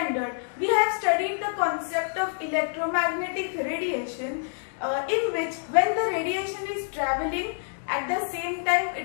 we have studied the concept of electromagnetic radiation, in which when the radiation is traveling, at the same time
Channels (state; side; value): silent; right; digital silence